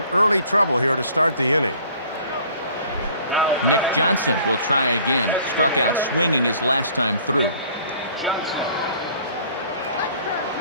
early trouble here to start the inning. Nick Johnson will try again. Struck out swinging his last time through.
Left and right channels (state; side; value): inverted; both; correlation -0.53